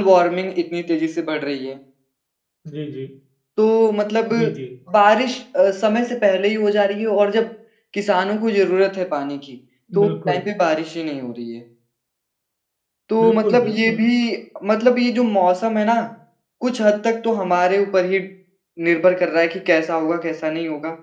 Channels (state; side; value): identical; both; correlation 1.00